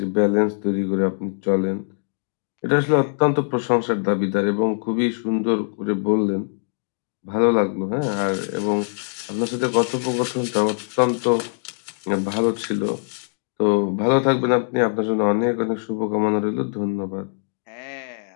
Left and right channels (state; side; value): silent; right; digital silence